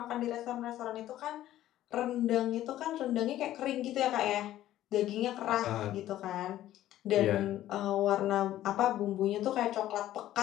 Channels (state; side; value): quieter; right; 13.5 dB